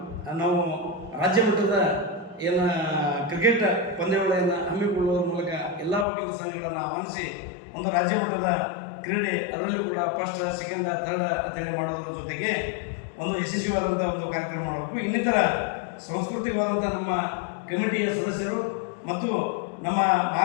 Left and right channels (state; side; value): drops out; right; at 6.1 s